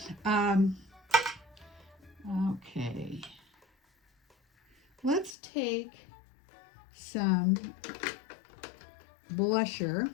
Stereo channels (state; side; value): drops out; right; at 5.4 s